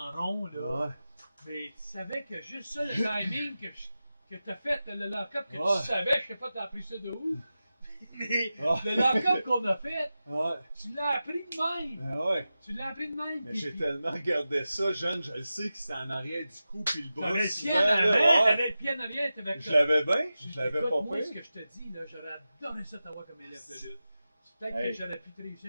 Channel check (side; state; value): both; inverted; correlation -0.93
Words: rond, là, Ouais. mais tu savais que juste ça, le timing que t'as fait, le lock-up, que Ouais. tu savais, je sais pas, t'as appris ça de où? Mais Ah. le lock-up qu'on a fait, Ouais, tu l'as appris de même. ben ouais. Tu l'as appris de même. Mais puis- j'ai tellement regardé ça, jeune, je le sais que c'était en arrière du cou, puis le bras T'avais le souvent, pied en là, avant, ouais. t'avais le pied en arrière, t'avais Je l'avais bien, Je- je l'avais écoute, pas moi, ce pire. que je te dis, là, j'aurais adoré ça t'avoir comme élève de lutte. Peut-être Hey. que j'aurais pu te réussir